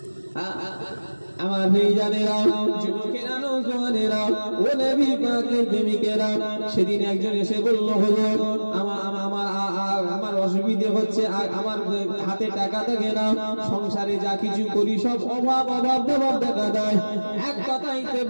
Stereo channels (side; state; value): both; inverted; correlation -1.00